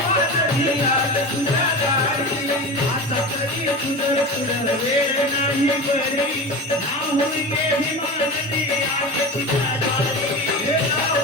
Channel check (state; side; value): normal; both; correlation 0.28